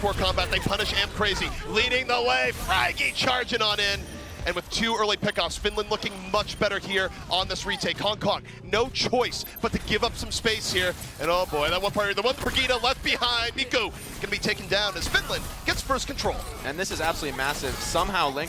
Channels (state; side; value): identical; both; correlation 1.00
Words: combat. They punish Am Crazy, leading the way. Fraggy charging on in. And with 2 early pickoffs, Finland looking much better here on this retake. Hong Kong, no choice but to give up some space here. And oh boy, that one player, the one Brigida left behind. Miku gonna be taken down as Finland gets first control. And this is absolutely massive. Somehow